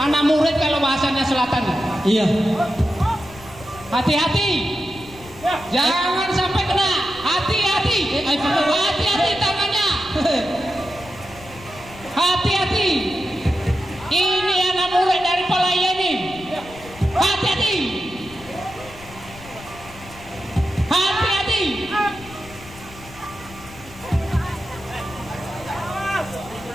murid kalau bahasanya Selatan. Iya. Hati-hati. Jangan sampai kena. Hati-hati. Hati-hati tangannya. Hati-hati. Ini anak murid dari Palaya ini. Hati-hati. Hati-hati.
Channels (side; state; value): left; noise; rumble, 19 dB below the sound